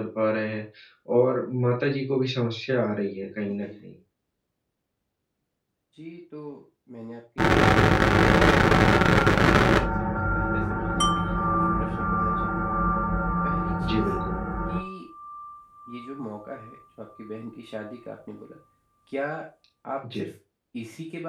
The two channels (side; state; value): both; identical; correlation 1.00